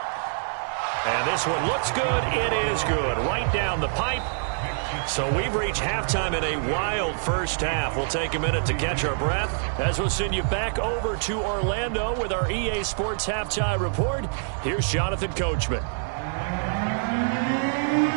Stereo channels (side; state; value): left; silent; digital silence